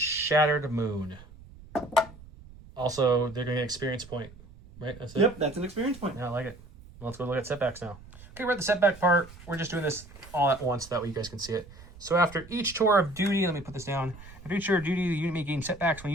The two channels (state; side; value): noise; right; rumble, 19 dB below the sound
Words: Moon. Also, they're going to get an experience point. Right? That's it? Yep, that's an experience point. Yeah, I like it. Well, let's go look at setbacks now. Okay, we're at the setback part. We're just doing this all at once. That way you guys can see it. So after each tour of duty, let me put this down. After each tour of duty, the unit may gain setbacks. When a